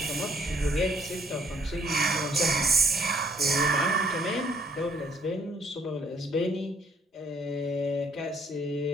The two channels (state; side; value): normal; both; correlation 0.63